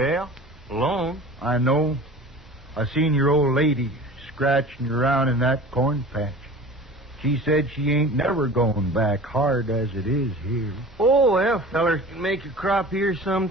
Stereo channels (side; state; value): both; normal; correlation 0.39